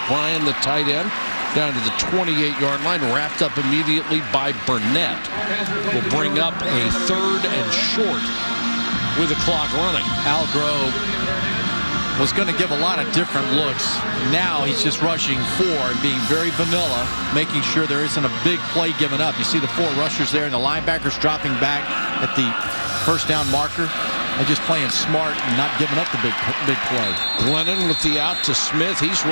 Bryan, the tight end, down to the 28-yard line, wrapped up immediately by Burnett. Will bring up a 3rd and short with the clock running. Algrove was going to give a lot of different looks. Now he's just rushing 4 and being very vanilla, making sure there isn't a big play given up. You see the 4 rushers there and the linebackers dropping back at the first down marker. They're just playing smart and not giving up the big play. Glennon with the out to Smith. He's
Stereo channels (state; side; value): inverted; both; correlation -1.00